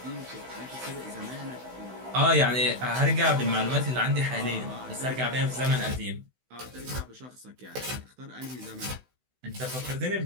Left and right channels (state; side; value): late; left; 16 ms